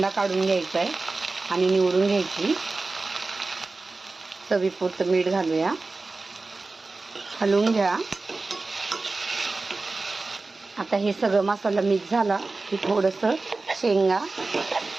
काढून घ्यायचा आहे आणि निवडून घ्यायची। चवीपुरतं मीठ घालूया, हलवून घ्या। आता हे सगळं मसाला मिक्स झाला की थोडंसं शेंगा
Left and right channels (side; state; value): left; quieter; 3.5 dB